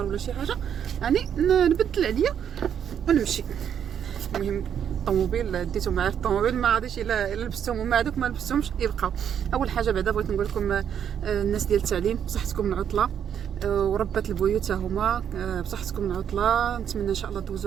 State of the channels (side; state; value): left; quieter; 8.7 dB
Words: ولا شي حاجه يعني نبدل عليا ونمشي. المهم الطوموبيل ديتو معايا في الطوموبيل، ما غاديش الا لبستهم وما هذوك ما لبستهمش يبقاو. اول حاجه بعدا بغيت نقول لكم الناس ديال التعليم بصحتكم العطله وربات البيوت هما بصحتكم العطله. نتمنى ان شاء الله